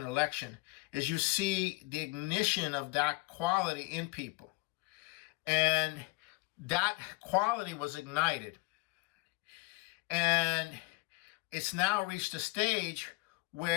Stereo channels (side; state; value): right; quieter; 25.1 dB